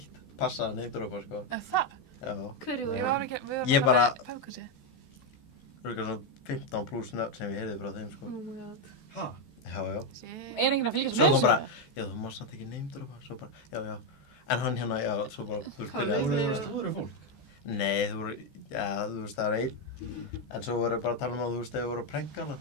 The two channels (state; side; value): late; right; 14 ms